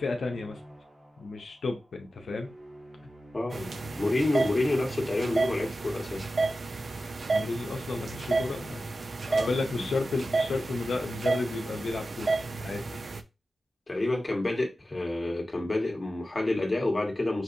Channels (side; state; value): both; normal; correlation 0.93